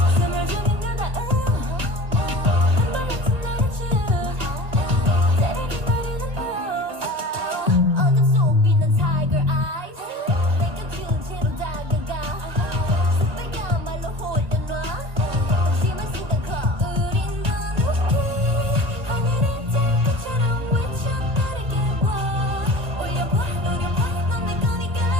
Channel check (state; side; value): late; left; 1.3 ms